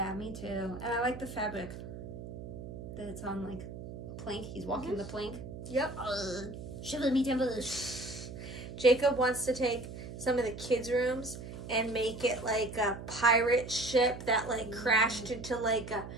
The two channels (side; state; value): right; noise; hum, 10 dB below the sound